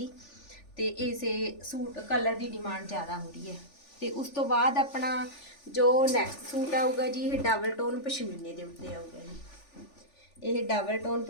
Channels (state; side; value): late; right; 3.4 ms